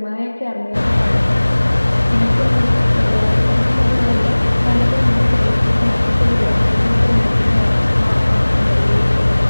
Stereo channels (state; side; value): inverted; both; correlation -1.00